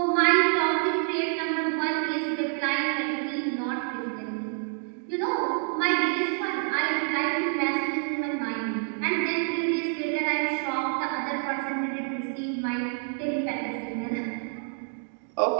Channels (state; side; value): silent; left; 60 dB below the other